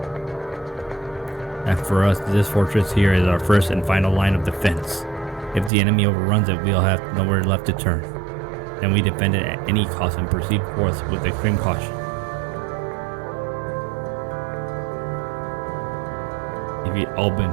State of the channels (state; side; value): drops out; left; at 5.7 s